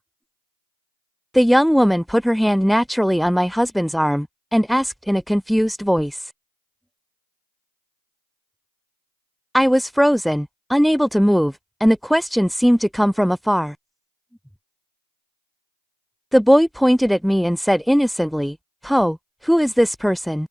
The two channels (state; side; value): identical; both; correlation 1.00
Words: The young woman put her hand naturally on my husband's arm, and asked in a confused voice. I was frozen, unable to move, and the question seemed to come from afar. The boy pointed at me and said innocently, "Po, who is this person?"